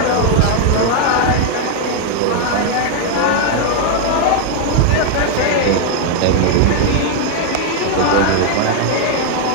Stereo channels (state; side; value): different; both; correlation 0.00